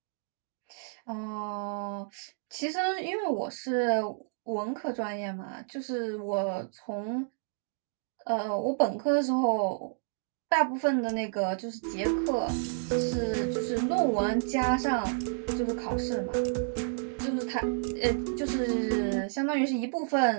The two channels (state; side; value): silent; left; digital silence